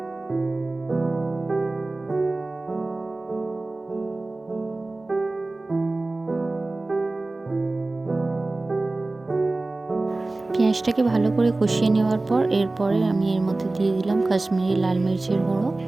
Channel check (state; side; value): quieter; left; 3.1 dB